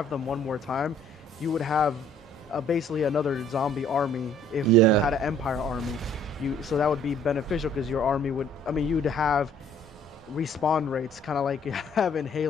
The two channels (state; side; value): normal; both; correlation 0.58